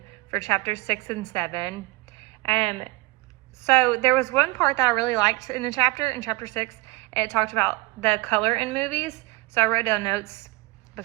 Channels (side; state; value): left; quieter; 22.6 dB